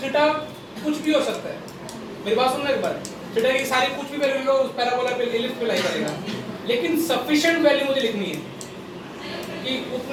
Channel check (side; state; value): both; identical; correlation 1.00